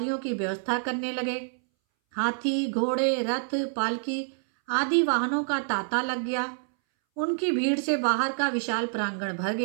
की व्यवस्था करने लगे। हाथी, घोड़े, रथ, पालकी आदि वाहनों का तांता लग गया। उनकी भीड़ से बाहर का विशाल प्रांगण भर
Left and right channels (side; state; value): left; silent; 60 dB below the other